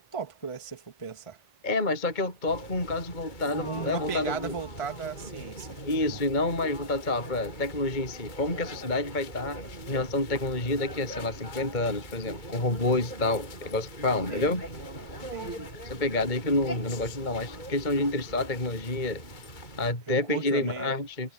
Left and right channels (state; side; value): late; right; 2.2 ms